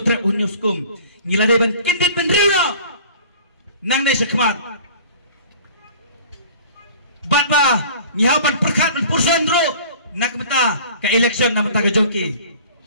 hunyau skum ngila de ban kendit benreu na nang de sekmat bat ba nyaw ban perkat ban purson ro nak meta ke election na meta ke joki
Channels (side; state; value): both; inverted; correlation -0.46